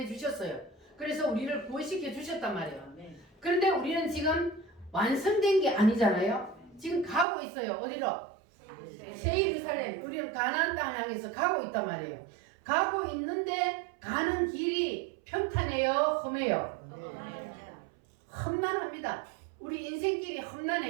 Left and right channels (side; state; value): left; drops out; at 7.2 s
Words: 주셨어요. 그래서 우리를 구원시켜 주셨단 말이에요. 그런데 우리는 지금 완성된 게 아니잖아요. 지금 가고 있어요. 어디로? 새 예루살렘. 우리는 가나안 땅을 향해서 가고 있단 말이에요. 가고 있는데 가는 길이 평탄해요? 험해요? 험난합니다. 우리 인생길이